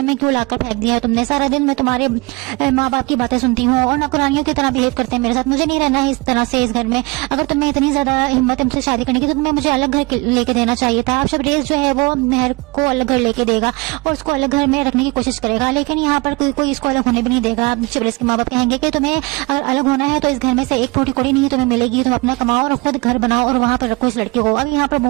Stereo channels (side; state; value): left; quieter; 26.3 dB